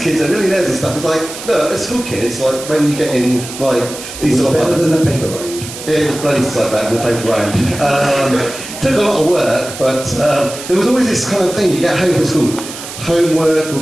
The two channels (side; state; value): right; noise; hiss, 11 dB below the sound